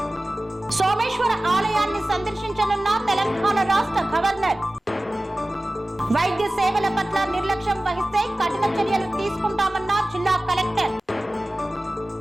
సోమేశ్వర ఆలయాన్ని సందర్శించనున్న తెలంగాణ రాష్ట్ర గవర్నర్. వైద్య సేవల పట్ల నిర్లక్ష్యం వహిస్తే కఠిన చర్యలు తీసుకుంటామన్న జిల్లా కలెక్టర్.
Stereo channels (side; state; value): both; normal; correlation 0.97